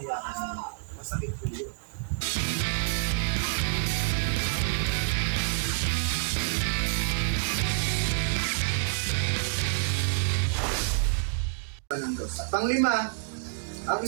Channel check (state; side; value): silent; left; digital silence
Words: ka niya. Masakit po yun. Ng Diyos. At panglima, ang